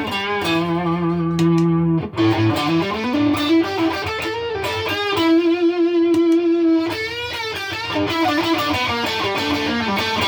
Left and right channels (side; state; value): both; identical; correlation 1.00